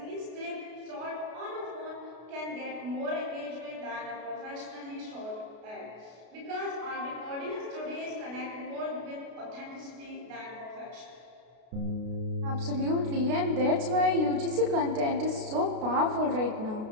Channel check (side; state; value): left; late; 33 ms